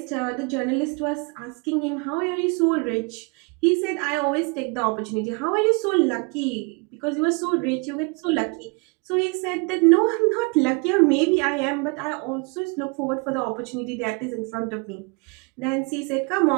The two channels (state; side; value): quieter; left; 31.8 dB